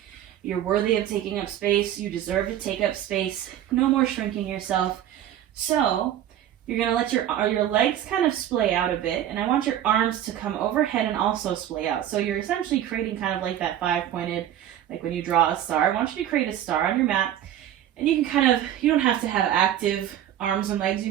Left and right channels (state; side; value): quieter; left; 11.3 dB